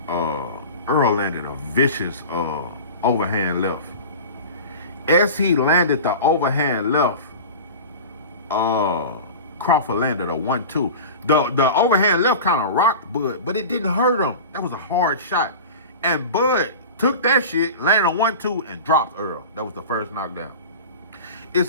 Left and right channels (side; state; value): both; inverted; correlation -0.33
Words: Errol landed a vicious overhand left. As he landed the overhand left, Crawford landed a 1-2. The overhand left kind of rocked Bud, but it didn't hurt him. That was a hard shot. And Bud took that shit, landed a 1-2, and dropped Errol. That was the first knockdown.